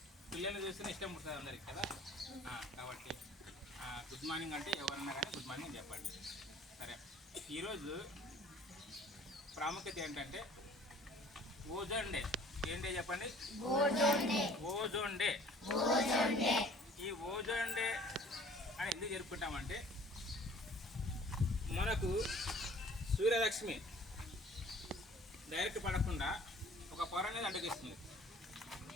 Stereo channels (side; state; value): both; normal; correlation 0.51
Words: పిల్లల్ని చూస్తేనే ఇష్టం పుడుతుంది అందరికి కదా. కాబట్టి గుడ్ మార్నింగ్ అంటే ఎవరన్నా కానీ గుడ్ మార్నింగ్ చెప్పండి. సరే, ఈరోజు ప్రాముఖ్యత ఏంటంటే ఓజోన్ డే. ఏం డే చెప్పండి? Ozone day. ఈ ఓజోన్ డే అని ఎందుకు జరుపుకుంటామంటే మనకు సూర్యరశ్మి డైరెక్ట్ పడకుండా ఒక పొర అనేది అడ్డగిస్తుంది.